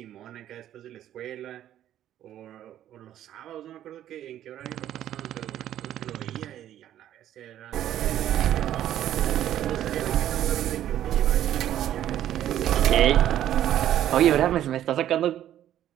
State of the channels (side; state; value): left; quieter; 11.8 dB